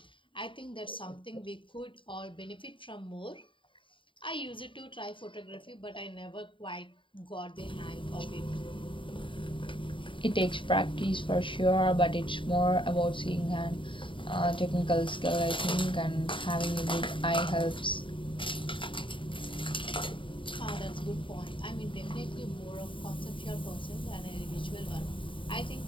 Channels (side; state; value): right; late; 0.25 ms